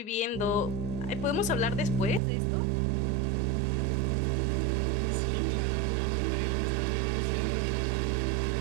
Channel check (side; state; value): left; drops out; at 2.2 s